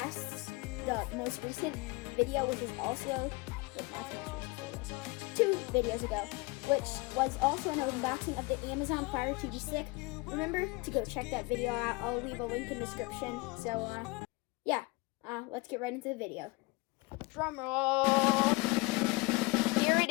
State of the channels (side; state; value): right; quieter; 24.9 dB